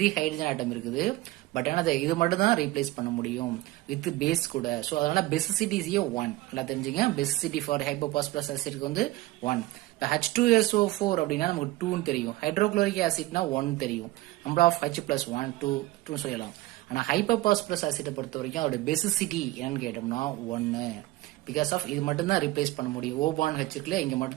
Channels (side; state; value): left; quieter; 18.1 dB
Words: hydrogen atom இருக்குது. பட் ஆனால் இது மட்டும் தான் ரீப்ளேஸ் பண்ண முடியும் வித் பேஸ் கூட. ஸோ அதனால பேசிசிட்டி இஸ் 1. நல்லா தெரிஞ்சுங்க. பேசிசிட்டி ஃபார் ஹைப்போபாஸ்பரஸ் ஆசிட்க்கு வந்து 1. இப்போ H2SO4 அப்படின்னா நமக்கு 2ன்னு தெரியும். ஹைட்ரோக்ளோரிக் ஆசிட்னா 1 தெரியும். நம்பர் ஆஃப் H + 1 2 சொல்லலாம். ஆனால் ஹைப்போபாஸ்பரஸ் ஆசிட்டை பொறுத்த வரைக்கும் அதோட பேசிசிட்டி என்னன்னு கேட்டோம்னா 1. பிகாஸ் ஆஃப் இது மட்டும் தான் ரீப்ளேஸ் பண்ண முடியும். O பாண்ட் H இருக்குல்ல இங்கே